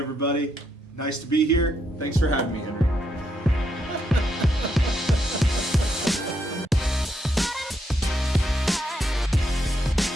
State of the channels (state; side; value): normal; both; correlation 0.78